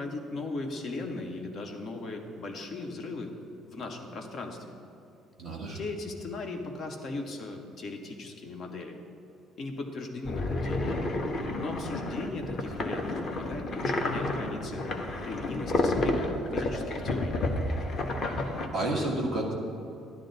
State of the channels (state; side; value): normal; both; correlation 0.68